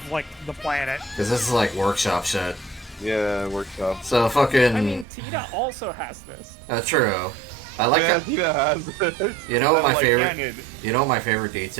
like, the planet? Because this is like workshop shit. Yeah, workshop. So fucking. I mean, Tita also has this. True. I like Yeah, that. Tina has it. You know what my Like favorite? Canyon. You know what my favorite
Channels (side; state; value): left; drops out; at 5.1 s